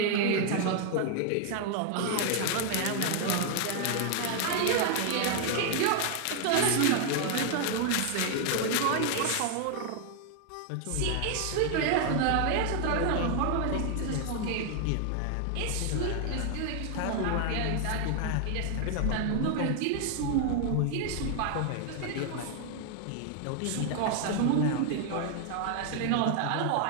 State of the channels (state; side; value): different; both; correlation 0.00